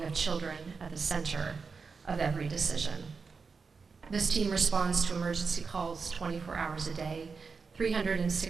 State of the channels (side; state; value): left; quieter; 5.0 dB